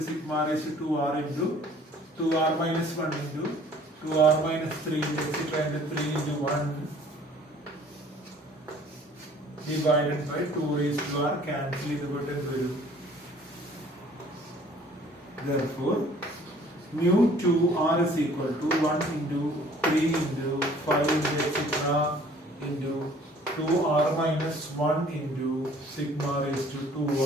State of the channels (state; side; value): normal; both; correlation 0.54